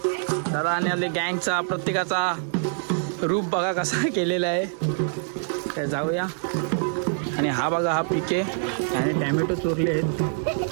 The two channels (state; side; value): silent; left; digital silence